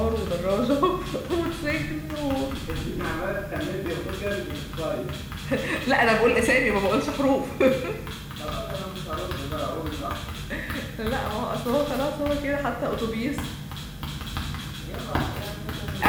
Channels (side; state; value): both; identical; correlation 1.00